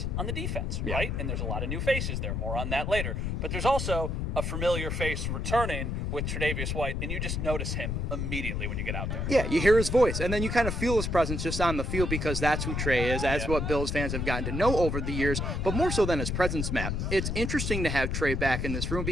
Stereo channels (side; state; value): left; noise; rumble, 1 dB below the sound